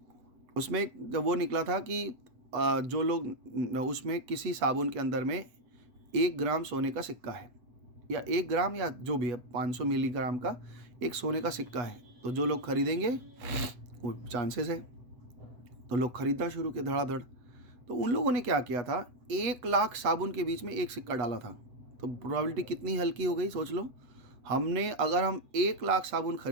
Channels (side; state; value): left; late; 8.1 ms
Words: उसमें जब वो निकला था कि जो लोग उसमें किसी साबुन के अंदर में 1 ग्राम सोने का सिक्का है, या 1 ग्राम या जो भी है 500 मिलीग्राम का एक सोने का सिक्का है, तो जो लोग खरीदेंगे वो चांसेस है, तो लोग खरीदना शुरू किए धड़ाधड़। तो उन लोगों ने क्या किया था, 1 लाख साबुन के बीच में एक सिक्का डाला था, तो प्रोबेबिलिटी कितनी हल्की हो गई, सोच लो। अगर हम 1 लाख साबुन